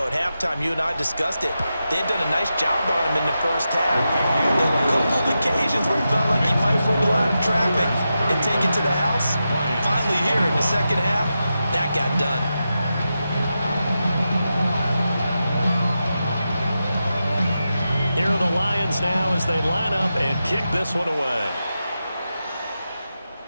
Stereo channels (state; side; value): inverted; both; correlation -0.89